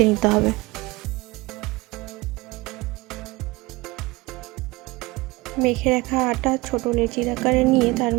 নিতে হবে। মেখে রাখা আটা ছোট লেচির আকারে নিয়ে তার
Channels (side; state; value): left; quieter; 22.4 dB